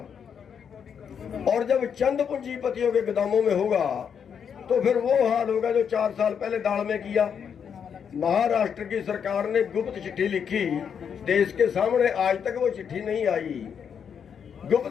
और जब चंद पूंजीपतियों के गोदामों में होगा तो फिर वो हाल होगा जो 4 साल पहले दाल में किया। महाराष्ट्र की सरकार ने गुप्त चिट्ठी लिखी देश के सामने, आज तक वो चिट्ठी नहीं आई।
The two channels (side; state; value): right; quieter; 7.4 dB